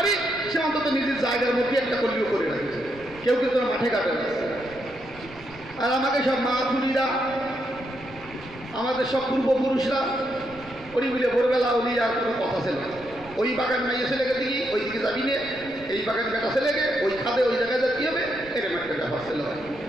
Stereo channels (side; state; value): right; noise; rumble, 21 dB below the sound